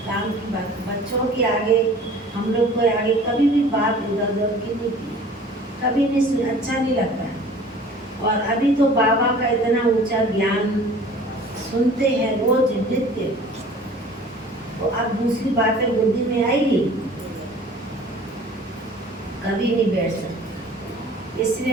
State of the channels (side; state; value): both; normal; correlation 0.47